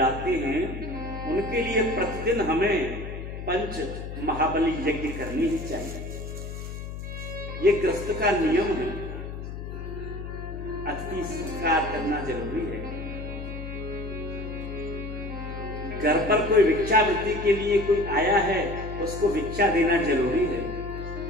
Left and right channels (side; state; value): left; noise; hum, 8 dB below the sound